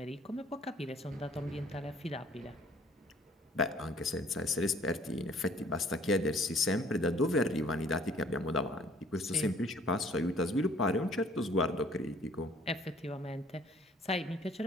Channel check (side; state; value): both; normal; correlation 0.57